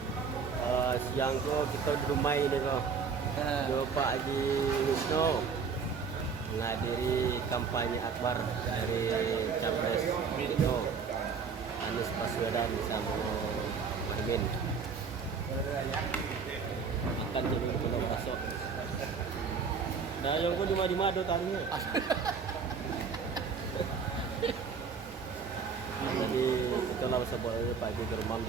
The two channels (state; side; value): quieter; left; 5.7 dB